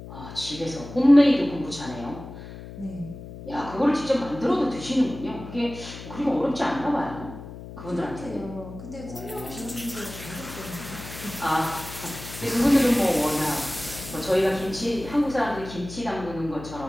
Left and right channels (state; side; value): noise; left; hum, 13 dB below the sound